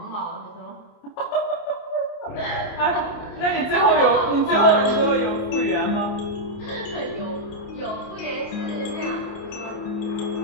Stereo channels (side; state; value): right; late; 28 ms